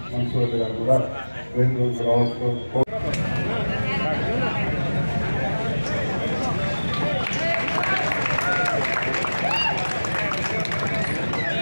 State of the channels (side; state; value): both; inverted; correlation -1.00